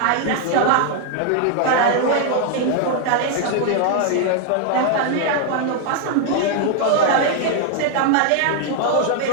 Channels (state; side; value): different; both; correlation 0.00